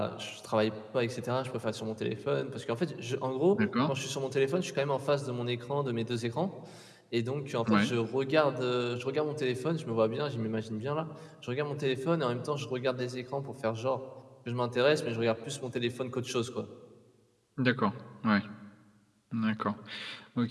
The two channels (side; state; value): both; identical; correlation 1.00